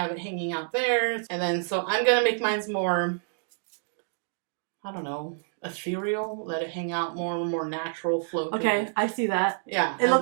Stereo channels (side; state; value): left; silent; digital silence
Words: it hanging out there. And then, so I'm going to make mine's more... I don't know, ethereal, let it hang out more natural flow. Okay, I see that. Yeah. It